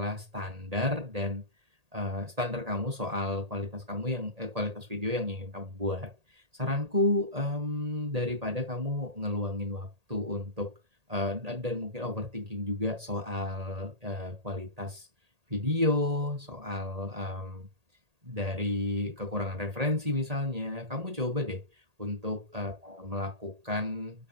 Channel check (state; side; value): late; left; 1.8 ms